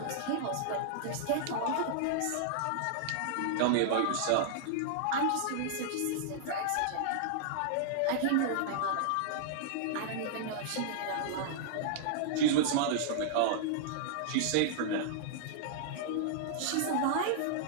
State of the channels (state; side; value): different; both; correlation -0.01